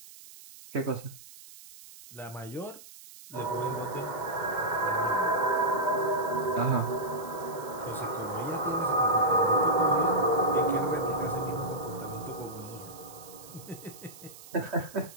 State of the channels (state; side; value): noise; right; hiss, 18 dB below the sound